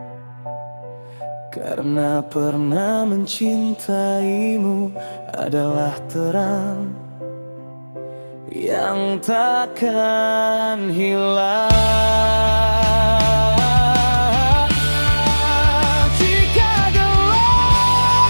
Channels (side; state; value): both; inverted; correlation -1.00